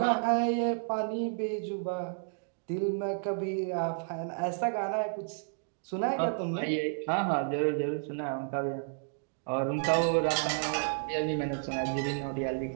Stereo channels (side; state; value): left; silent; digital silence